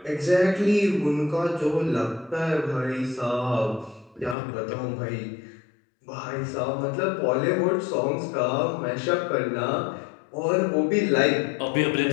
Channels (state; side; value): drops out; right; at 4.4 s